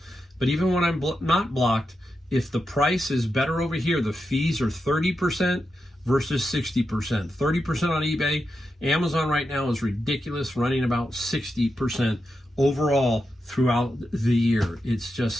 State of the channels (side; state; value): both; normal; correlation 0.87